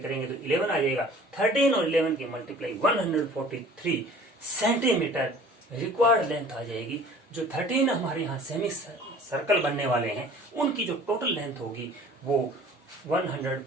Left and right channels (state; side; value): normal; both; correlation 0.48